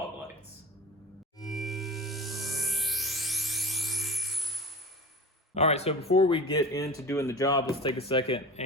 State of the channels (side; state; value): both; normal; correlation 0.35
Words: lights. All right, so before we get into doing the job, let's take a second